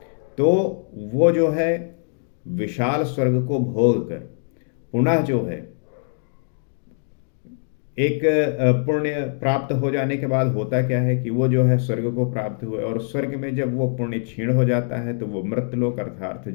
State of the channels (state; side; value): silent; right; digital silence